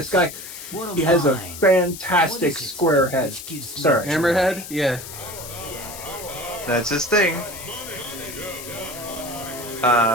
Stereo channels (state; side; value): noise; left; hiss, 12 dB below the sound